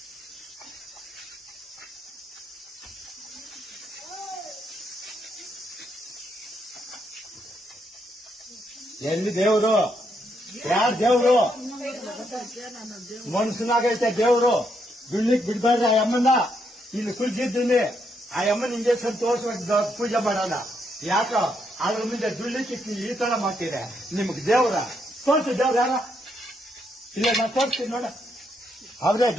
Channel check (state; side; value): normal; both; correlation 0.77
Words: ಎಲ್ಲಿ ದೇವ್ರು? ಯಾರ್ ದೇವ್ರು? ಮನ್ಸನಾಗೈತೆ ದೇವ್ರು. ದುಡ್ಲಿಕ್ ಬಿಡ್ಬಾರ್ದು ಆ ಅಮ್ಮನ. ಇಲ್ಲಿ ಕುಲ್ಸಿದ್ದೀನಿ ಆ ಅಮ್ಮನ ಇಂಜೆಕ್ಷನ್ ತೋರ್ಸ್ಬೇಕು, ಪೂಜೆ ಮಾಡೋಣ. ಯಾಕ ಅದ್ರ ಮುಂದೆ ದುಡ್ಲಿಕ್ಕೆ ಈ ತರ ಮಾಡ್ತೀರ? ನಿಮ್ಗೆ ದೇವ್ರ ತೋರ್ಸಿ, ದೇವ್ರ ಯಾರ? ಇಲ್ಲ ನಾ ತೋರಿಸ್ತೀನಿ ನೋಡ, ಅವ್ರೇ